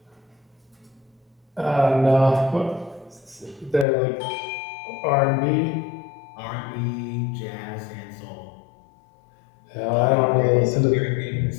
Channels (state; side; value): drops out; right; at 3.9 s